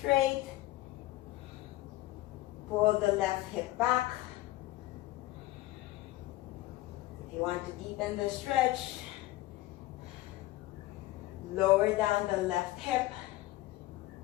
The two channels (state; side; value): quieter; right; 17.7 dB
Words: Pull the left hip back. If you want to deepen the stretch, lower down the left hip.